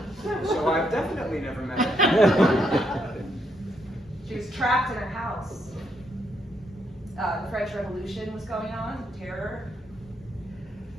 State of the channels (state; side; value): normal; both; correlation 0.76